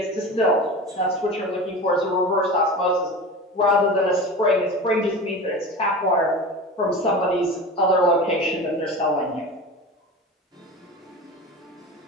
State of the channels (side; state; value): both; normal; correlation 0.31